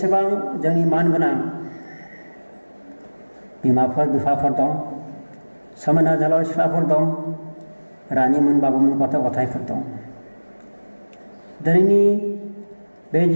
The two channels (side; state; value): both; inverted; correlation -1.00